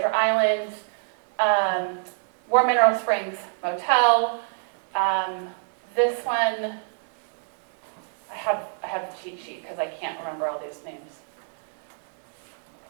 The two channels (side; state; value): left; silent; digital silence